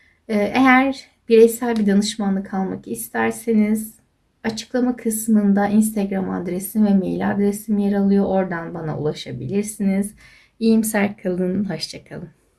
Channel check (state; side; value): identical; both; correlation 1.00